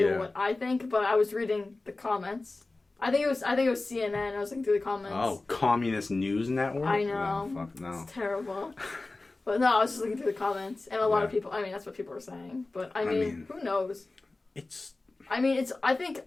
what I think, but I was reading the comments. I think it was CNN. I was looking through the comments. Oh, Communist News Network? I know. Oh, fuck no. It's terrible. But no, I was just looking through the comments. And a lot of people... I mean, that's what people were saying. But, I mean who knows? I think it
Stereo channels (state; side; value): quieter; right; 3.2 dB